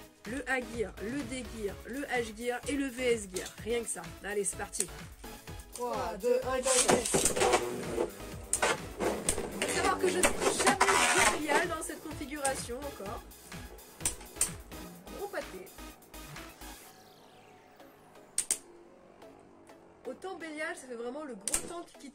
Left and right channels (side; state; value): both; identical; correlation 1.00